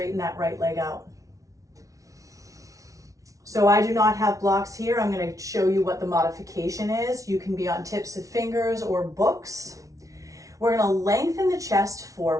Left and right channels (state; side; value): late; left; 0.17 ms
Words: that right leg out. So I do not have blocks here. I'm going to show you what the modification is. You can be on tips of fingers or books. We're going to lengthen the chest